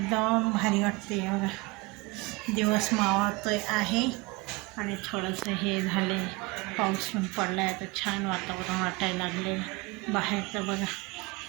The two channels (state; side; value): quieter; left; 24.3 dB